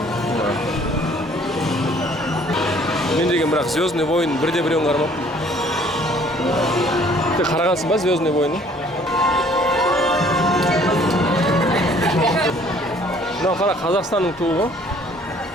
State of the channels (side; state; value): both; normal; correlation 0.57